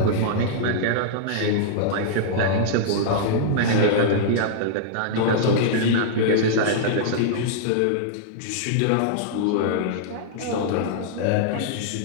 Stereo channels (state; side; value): different; both; correlation -0.02